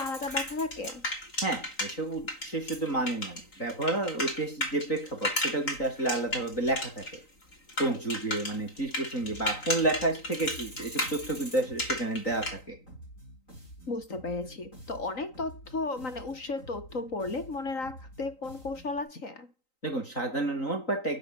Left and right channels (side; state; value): right; late; 3.9 ms